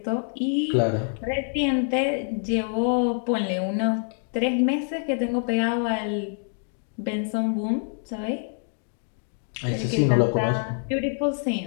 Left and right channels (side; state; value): right; silent; 61 dB below the other